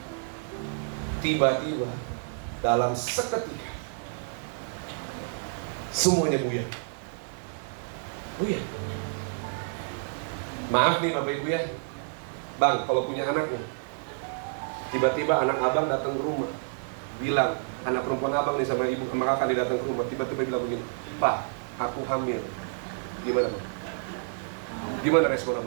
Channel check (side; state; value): left; silent; digital silence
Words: tiba-tiba dalam seketika semuanya buyar. Buyar. Maaf nih Bapak Ibu ya, Bang, kalau punya anak nih, tiba-tiba anak abang datang ke rumah, bilang, anak perempuan abang nih sama ibu sama kakak dia datang ke rumah, tiba-tiba bilang begini, Pak, aku hamil. Gimana Bang? Gimana respon